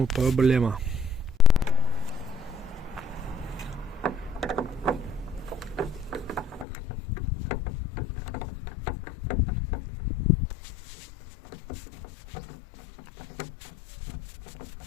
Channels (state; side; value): drops out; right; at 6.7 s